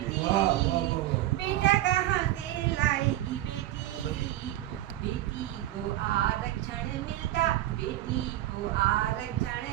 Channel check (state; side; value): quieter; left; 14.6 dB